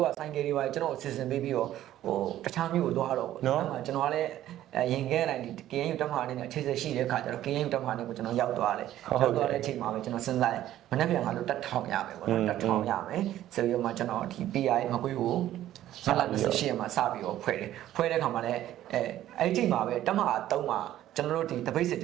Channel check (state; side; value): quieter; left; 13.0 dB